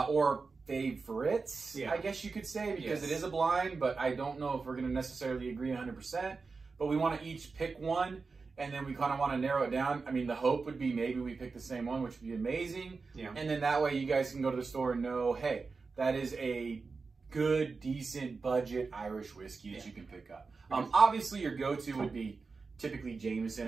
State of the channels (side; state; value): left; quieter; 4.4 dB